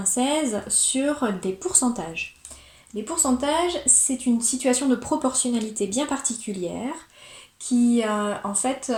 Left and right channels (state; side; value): identical; both; correlation 1.00